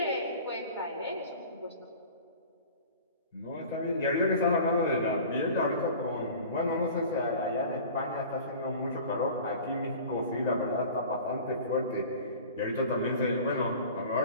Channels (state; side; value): inverted; both; correlation -0.41